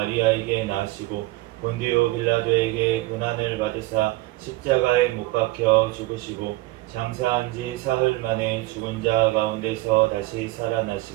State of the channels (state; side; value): quieter; left; 19.8 dB